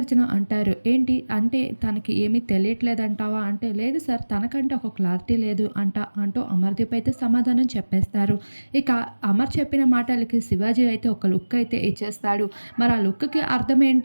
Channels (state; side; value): inverted; both; correlation -1.00